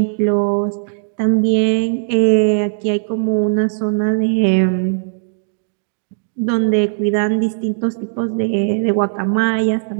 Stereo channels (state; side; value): silent; left; digital silence